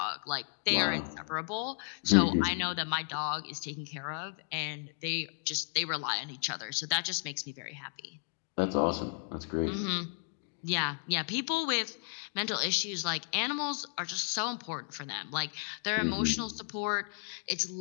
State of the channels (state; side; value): silent; right; 55 dB below the other